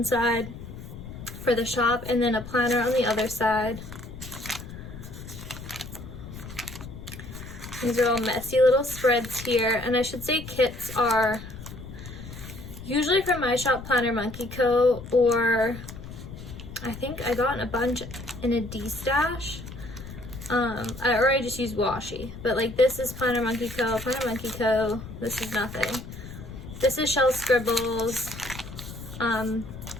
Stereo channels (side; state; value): left; noise; rumble, 12 dB below the sound